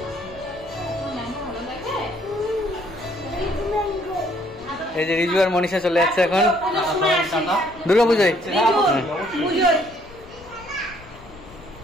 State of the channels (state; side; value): noise; left; rumble, 21 dB below the sound